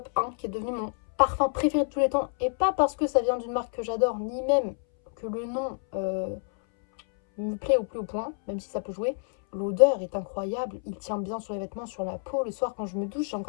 1, qui est devenu mon parfum préféré de tous les temps, et pas parce que ça vient d'une marque que j'adore, ni même que le nom me plaît au plus haut point, même si ça peut jouer. L'odeur est incroyable, il tient bien sur les vêtements, sur la peau. Le soir, quand je me douche, j'ai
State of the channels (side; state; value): right; silent; 59 dB below the other